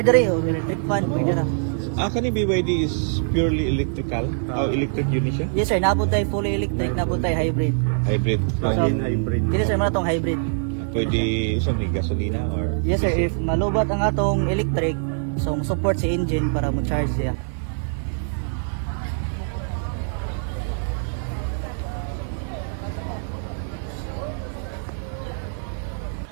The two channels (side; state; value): left; silent; 58 dB below the other